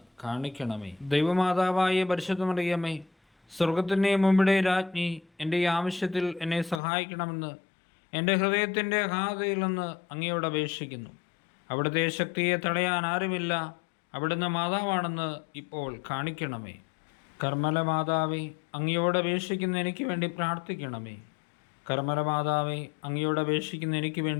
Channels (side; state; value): right; drops out; at 6.8 s